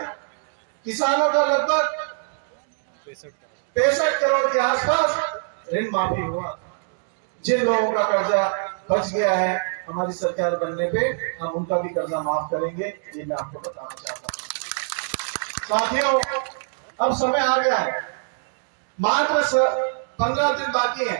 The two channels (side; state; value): left; silent; digital silence